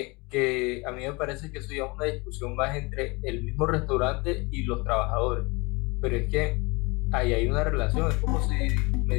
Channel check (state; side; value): quieter; right; 26.4 dB